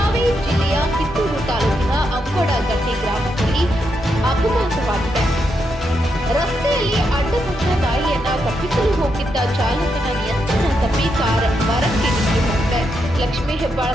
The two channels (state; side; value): normal; both; correlation 0.82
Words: ಜಿಲ್ಲೆಯ ಕಿತ್ತೂರು ತಾಲೂಕಿನ ಅಂಬಡಗಟ್ಟಿ ಗ್ರಾಮದಲ್ಲಿ ಅಪಘಾತವಾಗಿದೆ. ರಸ್ತೆಯಲ್ಲಿ ಅಡ್ಡಪಟ್ಟ ನಾಯಿಯನ್ನ ತಪ್ಪಿಸಲು ಹೋಗಿದ್ದ ಚಾಲಕನ ನಿಯಂತ್ರಣ ತಪ್ಪಿ ಕಾರ್ ಮರಕ್ಕೆ ನುಗ್ಗಿ ಹೋಗಿದೆ. ಲಕ್ಷ್ಮೀ